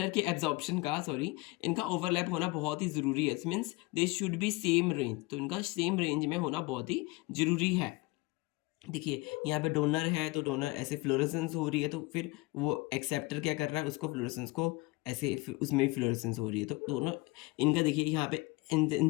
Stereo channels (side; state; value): right; quieter; 22.8 dB